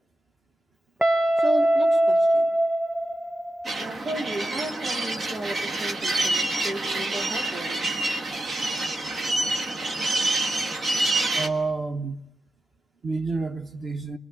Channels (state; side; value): normal; both; correlation 0.91